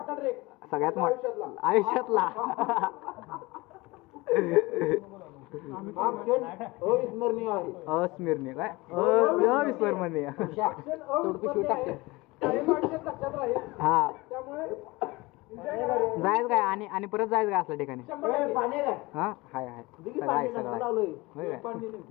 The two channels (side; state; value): right; quieter; 22.4 dB